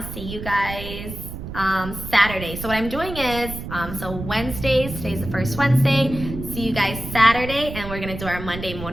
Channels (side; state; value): right; noise; rumble, 9 dB below the sound